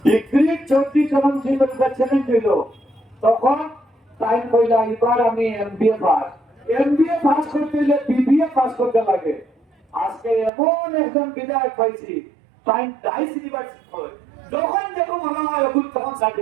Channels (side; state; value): left; drops out; at 10.5 s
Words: ডিগ্রি 34 জন ছিল চ্যালেঞ্জ দিল তখন টাইম কইলা এবার আমি এমবিএ পাস করতে হলে বিবিএ পাস করতে লাগে আজকে এমন একজন বিধায়ক পাইছি টাইম ডাইস ইউনিভার্সিটি করে যখন দেখো মনে হয় এখন তখন